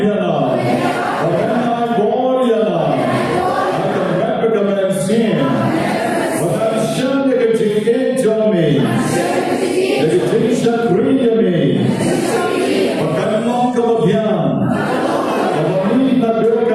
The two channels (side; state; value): both; identical; correlation 1.00